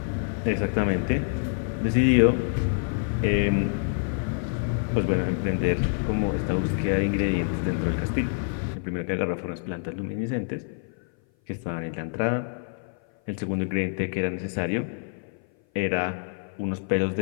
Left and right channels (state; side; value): silent; right; 57 dB below the other